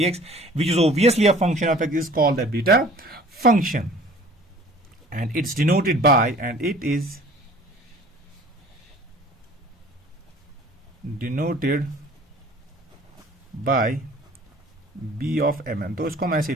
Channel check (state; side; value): normal; both; correlation 0.49